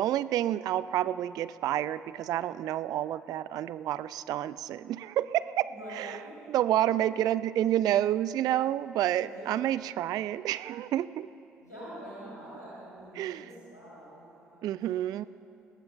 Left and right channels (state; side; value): quieter; left; 11.7 dB